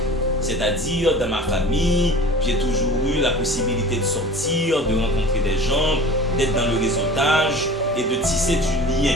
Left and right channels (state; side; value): normal; both; correlation 0.42